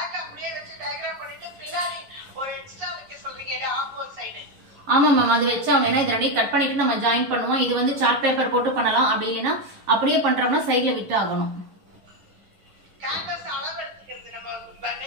ஆமா மேம். அது வச்சு அவன் இது ரெண்டையும் கட் பண்ணிட்டு நம்ம ஜாயின் பண்ணுவோம். இது வந்து சார்ட் பேப்பர் போட்டு பண்ணலாம். அப்படி இல்லைன்னா அப்படியே பண்றோம்னா சைட்ல விட்டு ஆகணும்.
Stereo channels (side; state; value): left; late; 11 ms